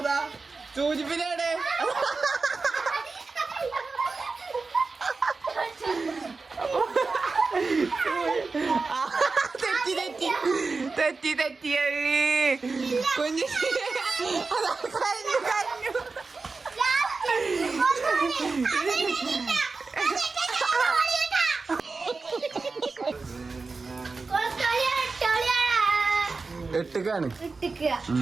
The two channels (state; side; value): quieter; left; 4.1 dB